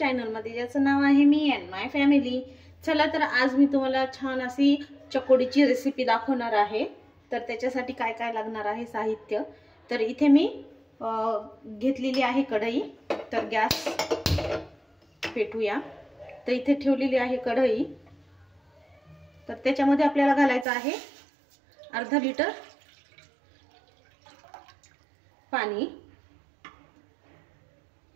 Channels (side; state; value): left; drops out; at 20.7 s